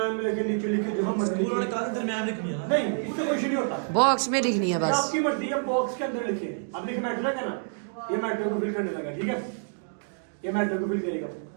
में लिखे, नीचे लिखे, जो हम मर्जी उन्होंने कहा दरमियान में लिखनी है ना? नहीं, उससे कुछ नहीं होता, बॉक्स में लिखनी है बस। आपकी मर्जी है, बॉक्स के अंदर लिखे। अब लिखे मैट्रिक है ना, ये मैट्रिक को फिल करने लगा। ठीक है, ये मैट्रिक को फिल करेगा।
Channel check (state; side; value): silent; left; digital silence